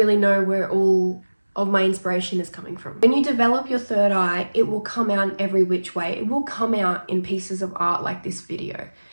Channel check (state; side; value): inverted; both; correlation -1.00